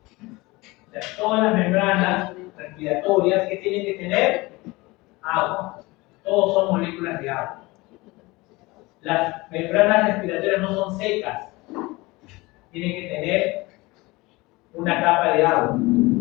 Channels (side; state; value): right; quieter; 22.4 dB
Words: sea, todas las membranas respiratorias que tienen que tener agua. Todos son moléculas de agua. Las membranas respiratorias no son secas. Tienen que tener una capa de agua.